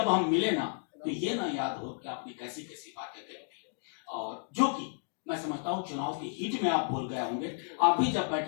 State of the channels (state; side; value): silent; right; digital silence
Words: हम मिले ना, तो ये ना याद हो कि आपने कैसी कैसी बातें कही थी, और जो कि मैं समझता हूं चुनाव की हीट में आप बोल गए होंगे। आप भी जब